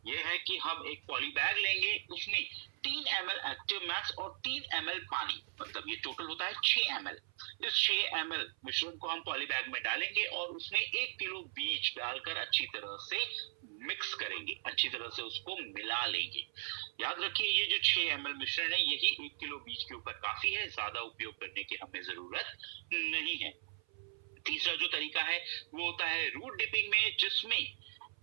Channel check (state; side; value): silent; left; 52 dB below the other